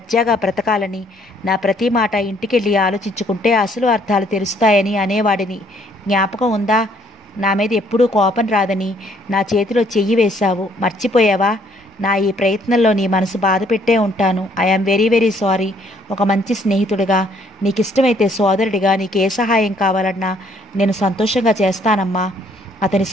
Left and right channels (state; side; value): normal; both; correlation 0.64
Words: బ్రతకాలని. నా ప్రతి మాట ఇంటికెళ్ళి ఆలోచించుకుంటే అసలు అర్థాలు తెలుస్తాయని అనేవాడిని. జ్ఞాపకం ఉందా? నా మీద ఎప్పుడూ కోపం రాదని నా చేతిలో చెయ్యి వేశావు, మర్చిపోయావా? నా ఈ ప్రయత్నంలో నీ మనసు బాధ పెట్టే ఉంటాను. I am very very sorry. ఒక మంచి స్నేహితుడిగా, నీకు ఇష్టమైతే సోదరుడిగా నీకు ఏ సహాయం కావాలన్నా నేను సంతోషంగా చేస్తానమ్మా. అతని